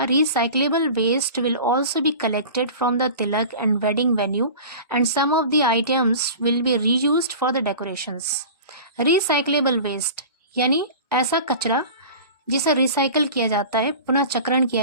recyclable waste will also be collected from the tilak and wedding venue and some of the items will be reused for the decorations. Recyclable waste यानी ऐसा कचरा जिसे रिसाइकल किया जाता है, पुनः चक्रण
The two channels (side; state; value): both; inverted; correlation -0.37